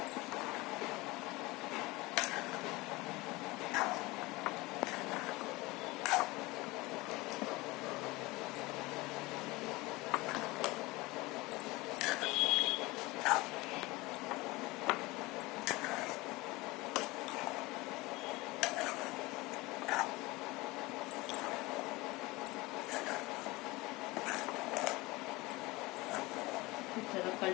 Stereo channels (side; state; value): right; quieter; 21.8 dB